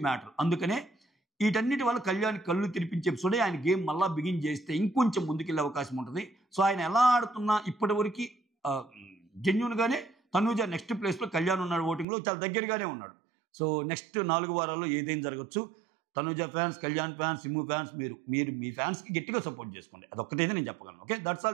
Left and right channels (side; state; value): left; drops out; at 12.1 s